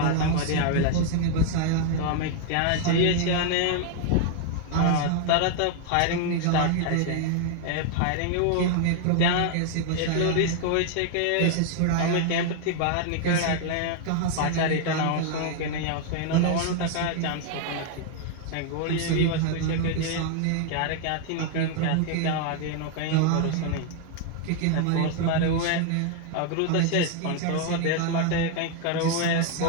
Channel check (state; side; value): different; both; correlation 0.00